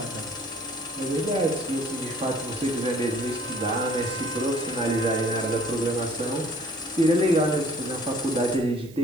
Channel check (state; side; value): noise; right; hiss, 24 dB below the sound